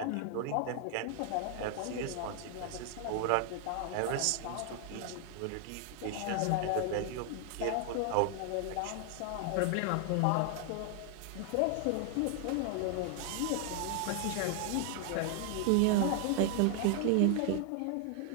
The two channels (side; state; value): both; different; correlation 0.00